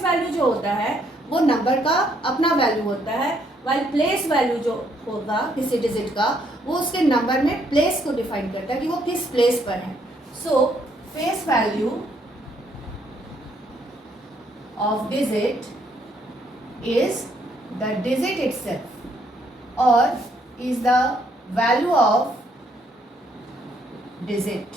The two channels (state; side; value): normal; both; correlation 0.70